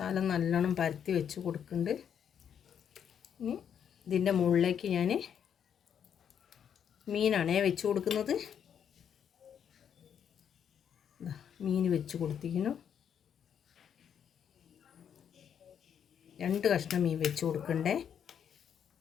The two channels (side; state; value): right; quieter; 8.4 dB